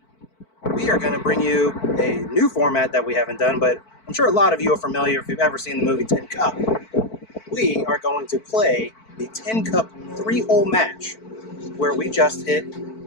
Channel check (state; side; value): late; right; 4.5 ms